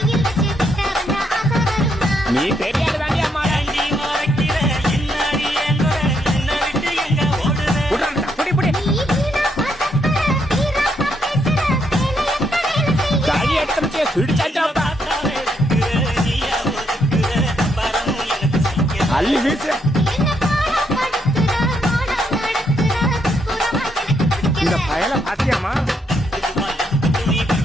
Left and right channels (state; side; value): normal; both; correlation 0.76